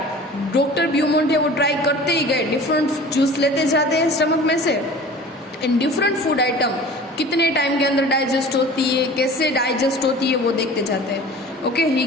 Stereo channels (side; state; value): both; normal; correlation 0.42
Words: doctor Beaumont है वो ट्राई करते ही गए, डिफरेंट जूस लेते जाते हैं स्टमक में से एंड डिफरेंट फूड आइटम कितने टाइम के अंदर डाइजेस्ट होती है, कैसे डाइजेस्ट होती है वो देखते जाते हैं। Okay, he